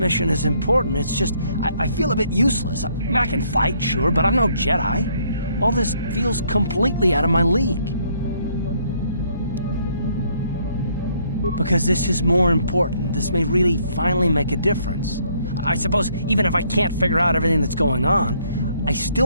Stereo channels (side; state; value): both; inverted; correlation -0.68